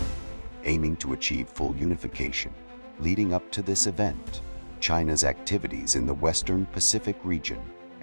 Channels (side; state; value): both; inverted; correlation -1.00